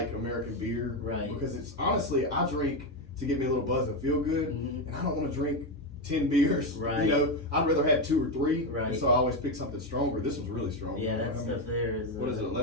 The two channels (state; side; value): normal; both; correlation 0.10